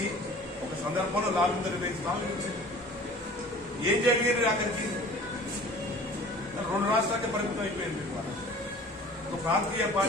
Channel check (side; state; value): both; normal; correlation 0.45